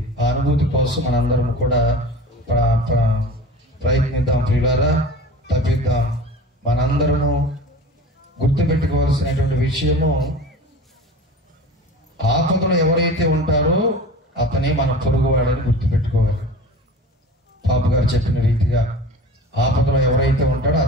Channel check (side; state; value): both; normal; correlation 0.36